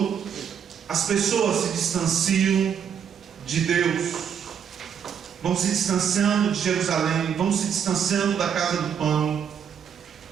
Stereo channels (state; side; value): quieter; left; 7.9 dB